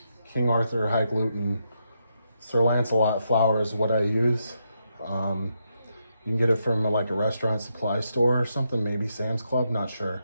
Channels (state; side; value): inverted; both; correlation -0.81